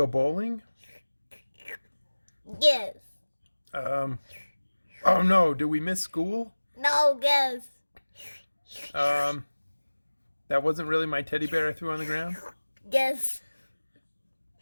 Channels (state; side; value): inverted; both; correlation -1.00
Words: bowling? Guess. Oh no, did we miss school? No, guess. That wasn't really my teddy bear I threw on the ground? Guess.